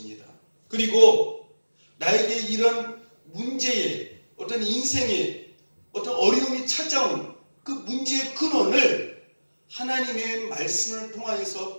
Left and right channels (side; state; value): both; inverted; correlation -1.00